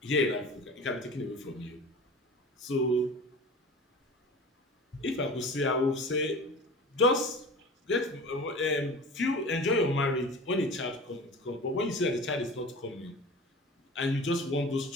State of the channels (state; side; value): normal; both; correlation 0.37